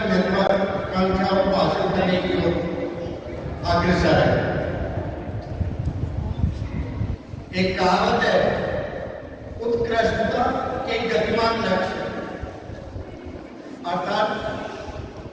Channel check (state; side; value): identical; both; correlation 1.00